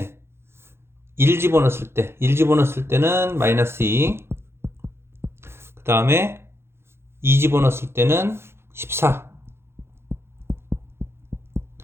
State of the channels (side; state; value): left; late; 0.12 ms